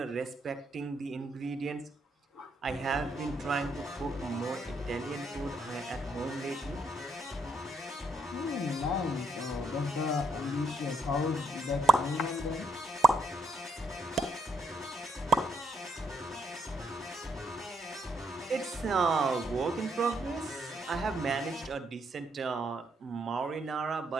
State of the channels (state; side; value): normal; both; correlation 0.75